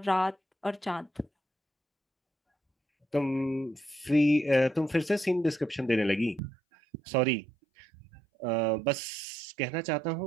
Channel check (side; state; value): left; drops out; at 6.4 s